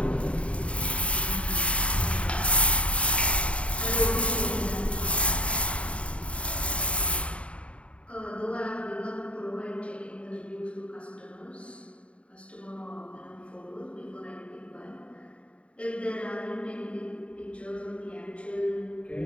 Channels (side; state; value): right; late; 0.062 ms